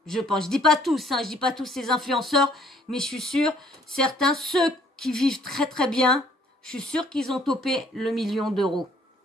Je pense. Je dis pas tous, je dis pas tous ces influenceurs, mais je suis sûre, certains, ceux qui vivent très très bien, je suis sûre qu'ils ont topé le 1 million d'euros.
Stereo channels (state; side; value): normal; both; correlation 0.61